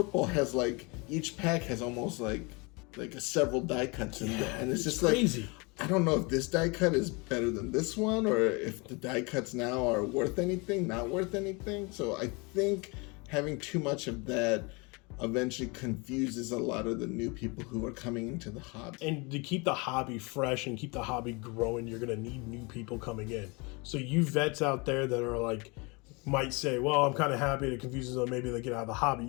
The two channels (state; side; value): quieter; right; 28.6 dB